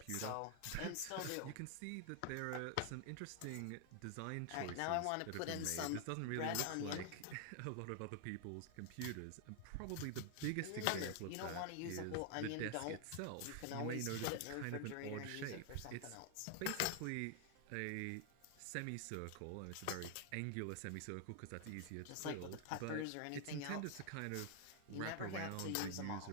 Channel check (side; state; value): both; different; correlation 0.00